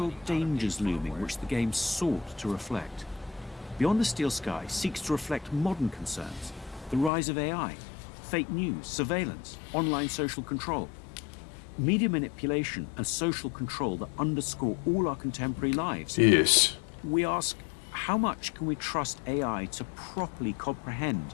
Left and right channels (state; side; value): drops out; right; at 7.1 s